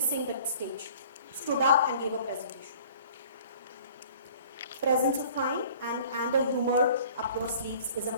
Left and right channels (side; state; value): both; inverted; correlation -0.50